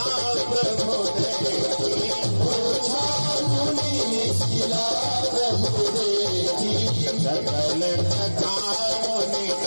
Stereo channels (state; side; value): inverted; both; correlation -1.00